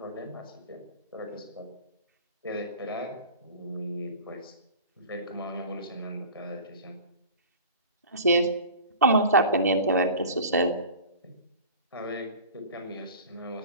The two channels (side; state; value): both; inverted; correlation -0.39